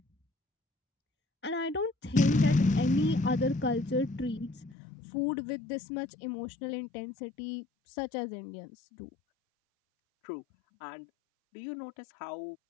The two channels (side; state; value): right; drops out; at 4.8 s